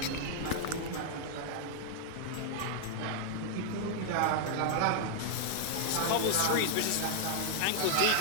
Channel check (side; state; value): both; different; correlation -0.01